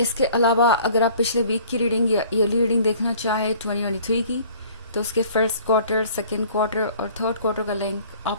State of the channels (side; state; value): both; inverted; correlation -0.51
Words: अलावा अगर आप पिछले वीक की रीडिंग या ईयरली रीडिंग देखना चाहें 2023 की, तो उसके फर्स्ट क्वार्टर, सेकेंड क्वार्टर और थर्ड क्वार्टर का लिंक